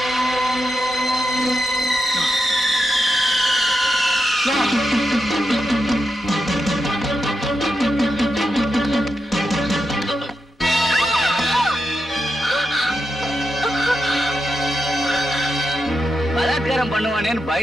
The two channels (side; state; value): both; normal; correlation 0.86